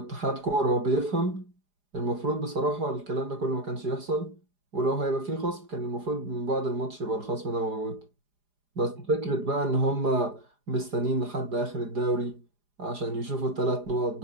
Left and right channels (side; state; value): left; late; 4.9 ms